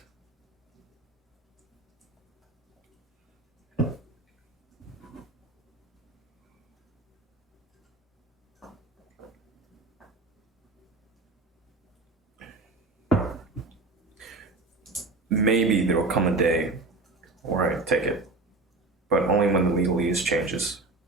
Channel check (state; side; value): quieter; left; 3.4 dB